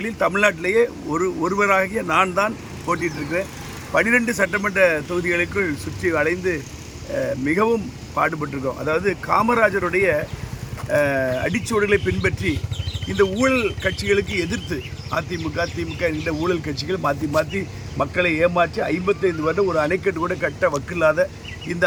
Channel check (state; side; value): identical; both; correlation 1.00